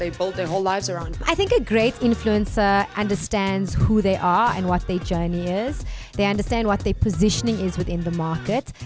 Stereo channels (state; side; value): identical; both; correlation 1.00